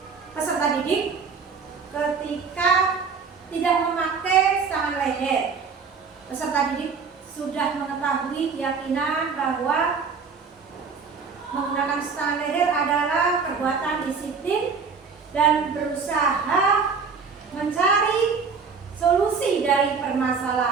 peserta didik ketika tidak memakai stang leher. Peserta didik sudah mengetahui keyakinan bahwa menggunakan stang leher adalah perbuatan disiplin dan berusaha mencari solusi dari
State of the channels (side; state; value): left; quieter; 5.4 dB